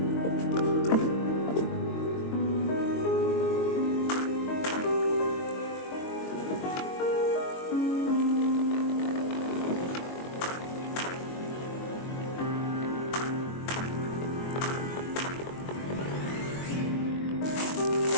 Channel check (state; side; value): late; right; 22 ms